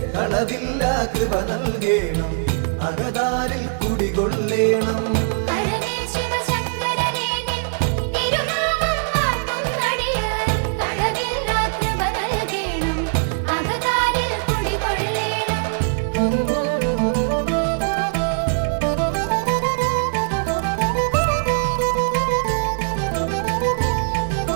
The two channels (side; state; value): left; silent; digital silence